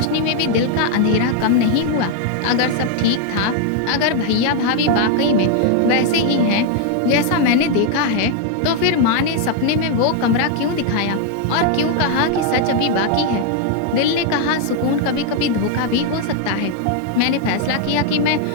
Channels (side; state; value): both; different; correlation 0.00